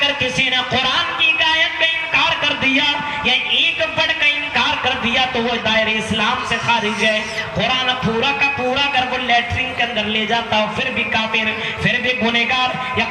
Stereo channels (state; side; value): identical; both; correlation 1.00